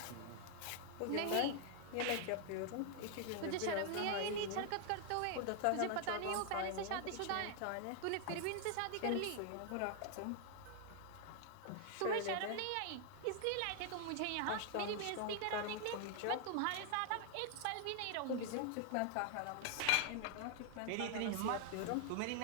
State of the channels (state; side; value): different; both; correlation 0.00